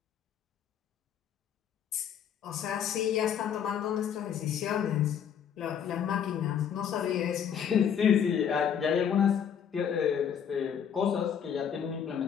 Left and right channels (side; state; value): right; quieter; 8.3 dB